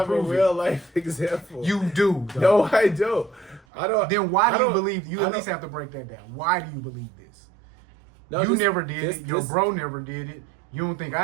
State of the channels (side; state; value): left; drops out; at 3.7 s